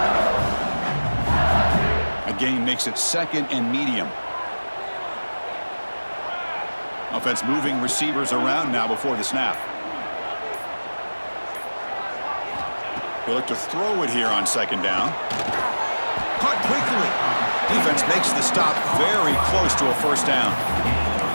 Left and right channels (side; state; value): both; inverted; correlation -1.00